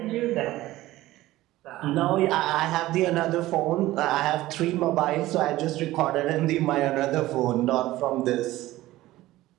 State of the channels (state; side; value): quieter; left; 16.6 dB